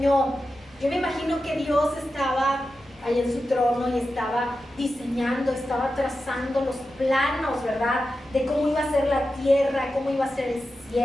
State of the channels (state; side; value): noise; left; hum, 29 dB below the sound